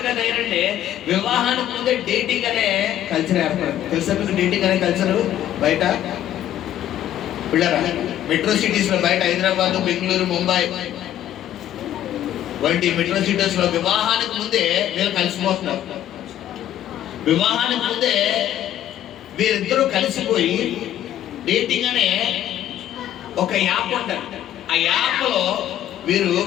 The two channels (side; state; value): right; quieter; 11.7 dB